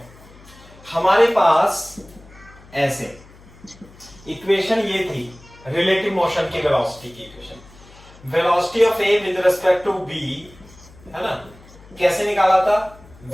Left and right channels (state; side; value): noise; left; hum, 23 dB below the sound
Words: हमारे पास ऐसे इक्वेशन ये थी रिलेटिव मोशन की वेलोसिटी की equation, velocity of A with respect to B, है ना? कैसे निकाला था?